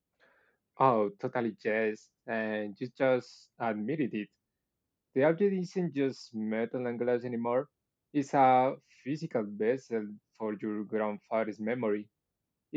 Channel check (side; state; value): both; identical; correlation 1.00